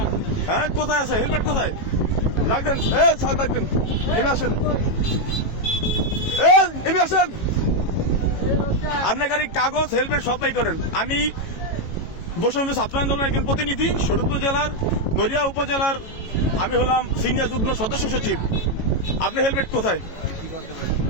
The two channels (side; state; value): right; late; 18 ms